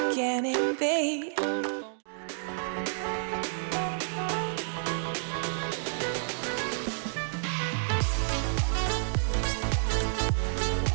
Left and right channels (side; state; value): left; silent; digital silence